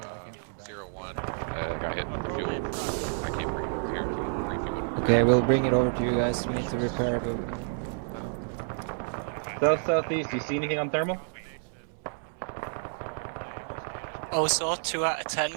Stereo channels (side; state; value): left; silent; digital silence